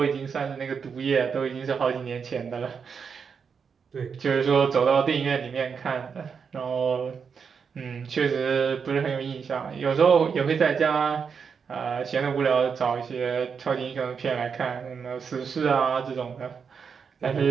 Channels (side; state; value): left; quieter; 6.2 dB